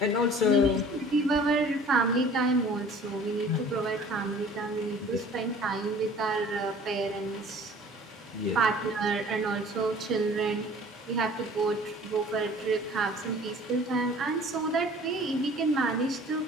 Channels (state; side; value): normal; both; correlation 0.49